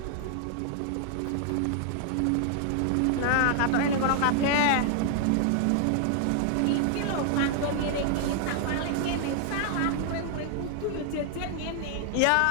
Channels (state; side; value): different; both; correlation 0.00